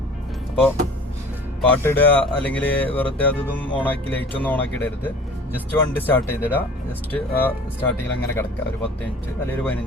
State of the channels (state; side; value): normal; both; correlation 0.45